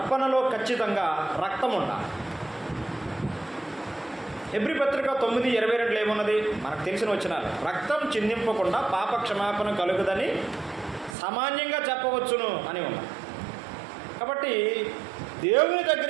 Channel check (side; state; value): left; drops out; at 11.2 s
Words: ఖచ్చితంగా రక్తం ఉండాలి. హెబ్రీ పత్రిక 9:22 ఏమున్నది? మనకు తెలిసిన వచనాలు. రక్తం చిందింపకుండా పాప క్షమాపణ కలుగుదని సామాన్యంగా చెప్పవచ్చును అని ఉన్నది. కాబట్టి దేవుని